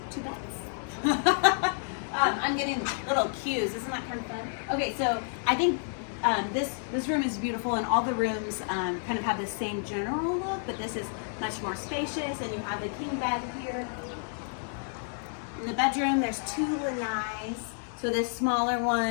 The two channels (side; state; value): right; silent; 58 dB below the other